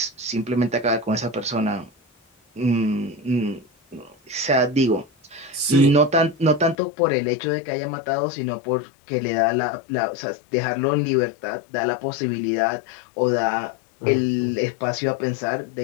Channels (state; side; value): drops out; right; at 6.8 s